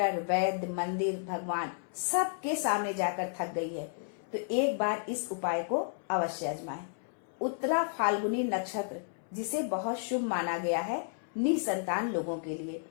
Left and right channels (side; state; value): right; silent; 56 dB below the other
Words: वैद्य, मंदिर, भगवान सबके सामने जाकर थक गई है, तो एक बार इस उपाय को अवश्य आजमाएं। उत्तरा फाल्गुनी नक्षत्र, जिसे बहुत शुभ माना गया है निसंतान लोगों के लिए।